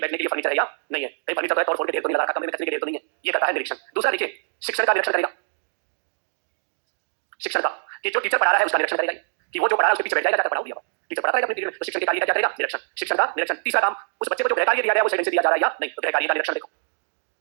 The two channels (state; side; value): silent; left; digital silence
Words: बैठने के लिए फर्नीचर है या नहीं है, कहीं फर्नीचर तो है, तोड़ फोड़ के ढेर तो नहीं लगा रखा, कमरे में कचरे के ढेर तो नहीं है। ये करता है निरीक्षण। दूसरा देखिए शिक्षण का निरीक्षण करेगा। शिक्षण का कि जो टीचर पढ़ा रहा है उसका निरीक्षण करेगा कि वो जो पढ़ा रहा है उसके पीछे बैठ जाएगा, जाकर पढ़ाओ दिया टीचर पढ़ाता रहेगा अपने पीरियड में, तो शिक्षण के कार्य का क्या करेगा? निरीक्षण। शिक्षण का निरीक्षण। तीसरा काम उस बच्चे को जो गृह कार्य दिया गया है वो सही से दिया जा रहा है या नहीं, तो गृह कार्य का निरीक्षण देखो।